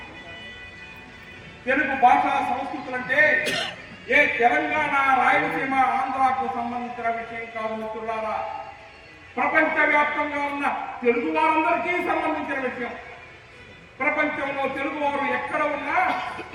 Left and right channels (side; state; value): both; identical; correlation 1.00